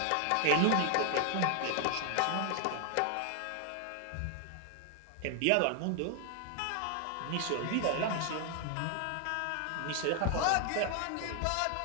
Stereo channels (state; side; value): different; both; correlation 0.00